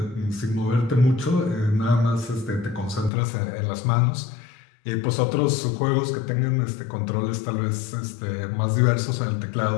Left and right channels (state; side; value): drops out; right; at 3.1 s